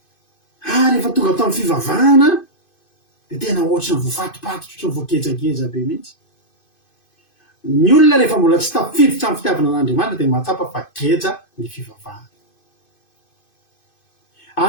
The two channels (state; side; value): late; right; 2.5 ms